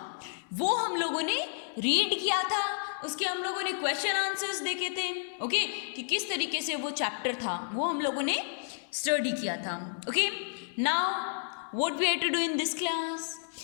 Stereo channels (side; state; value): right; silent; digital silence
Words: वो हम लोगों ने रीड किया था, उसके हम लोगों ने क्वेश्चन आंसर्स देखे थे, ओके, कि किस तरीके से वो चैप्टर था वो हम लोगों ने स्टडी किया था। Okay, now what we have to do in this class?